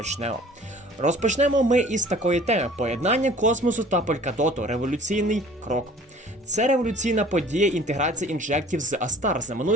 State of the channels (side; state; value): both; normal; correlation 0.50